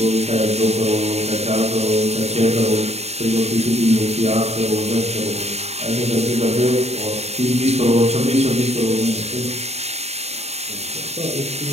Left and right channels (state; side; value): late; left; 0.31 ms